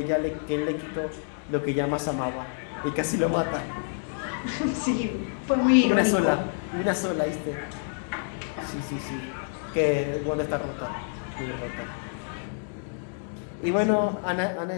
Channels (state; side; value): silent; right; digital silence